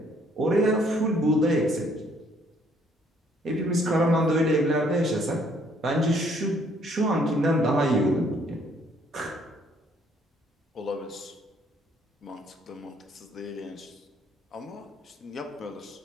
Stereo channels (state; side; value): normal; both; correlation 0.65